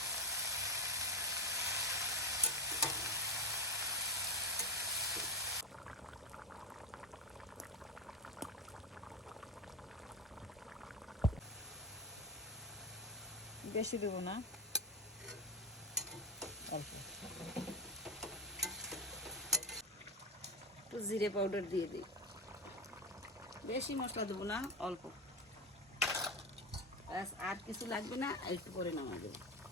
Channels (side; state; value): both; normal; correlation 0.16